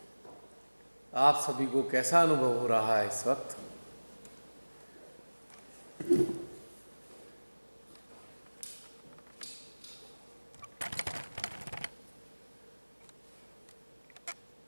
आप सभी को कैसा अनुभव हो रहा है इस वक्त?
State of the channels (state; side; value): inverted; both; correlation -1.00